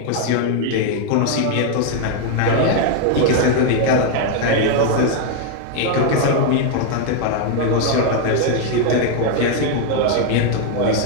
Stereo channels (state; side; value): different; both; correlation 0.00